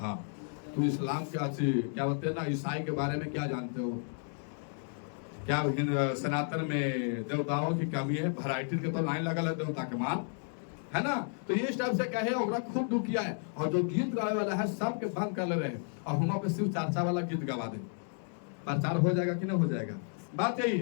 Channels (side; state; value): right; silent; 56 dB below the other